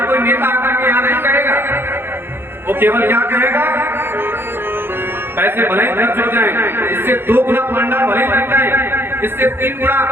कोई नेता आकर के यहाँ नहीं कहेगा, वो केवल क्या कहेगा, पैसे भले ही खर्च हो जाए, इससे 2 गुना पंडाल भले लग जाए, इससे 3 गुना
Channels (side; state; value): left; late; 0.11 ms